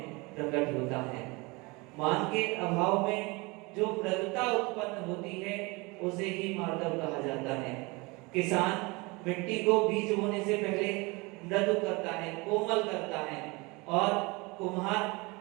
प्रकट होता है। मान के अभाव में जो मृदुता उत्पन्न होती है उसे ही मार्दव कहा जाता है। किसान मिट्टी को बीज बोने से पहले मृदु करता है कोमल करता है और कुम्हार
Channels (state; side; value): quieter; left; 25.9 dB